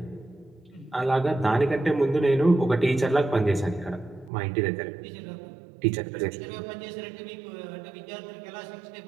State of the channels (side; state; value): left; drops out; at 4.3 s